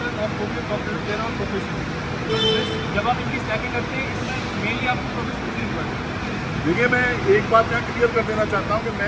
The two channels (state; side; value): identical; both; correlation 1.00